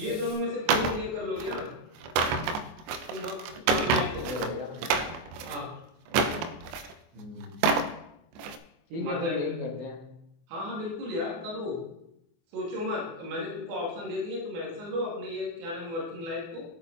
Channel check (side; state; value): left; late; 24 ms